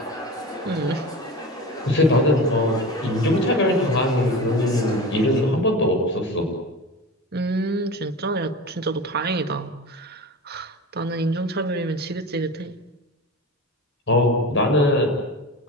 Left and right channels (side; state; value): both; normal; correlation 0.31